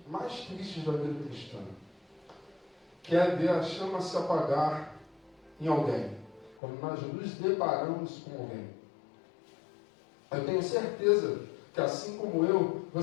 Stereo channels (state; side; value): drops out; right; at 6.6 s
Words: mais tristes da vida cristã, que é ver a chama se apagar em alguém, quando nós nos deparamos com alguém. Eu tenho certeza que, assim como eu,